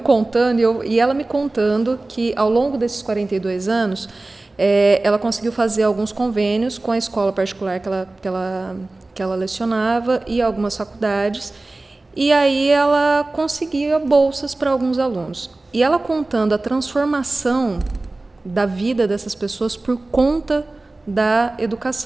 e ela me contando que ao longo desses 42 anos, ela conseguiu fazer alguns convênios com a escola particular que ela lecionava e algumas faculdades, e aí ela conseguia bolsas para alguns alunos. E ela contando a transformação da vida dessas pessoas por conta da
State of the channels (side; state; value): left; quieter; 3.0 dB